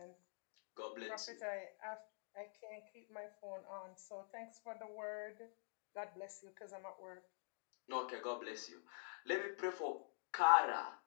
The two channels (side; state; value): right; silent; digital silence